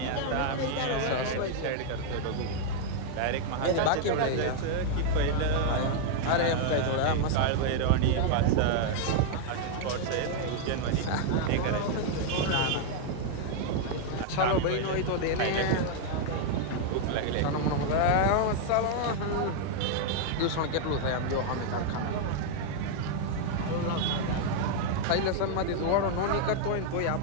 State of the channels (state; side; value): different; both; correlation 0.00